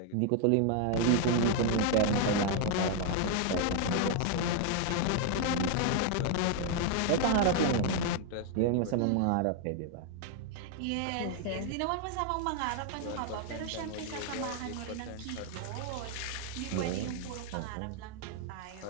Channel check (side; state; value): both; different; correlation 0.01